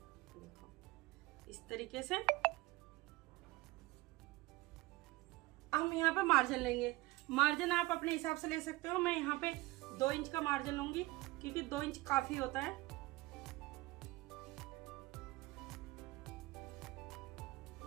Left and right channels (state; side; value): quieter; left; 20.6 dB